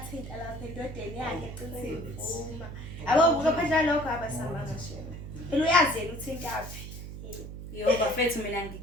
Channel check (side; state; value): right; noise; hum, 10 dB below the sound